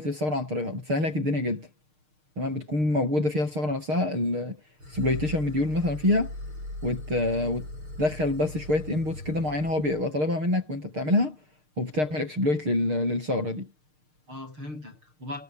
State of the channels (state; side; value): late; left; 6.6 ms